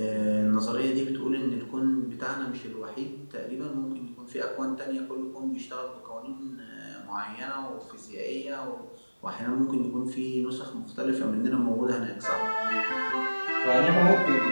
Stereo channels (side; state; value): both; inverted; correlation -1.00